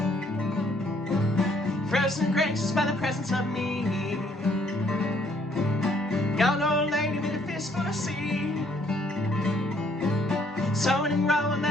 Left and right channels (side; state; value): both; normal; correlation 0.65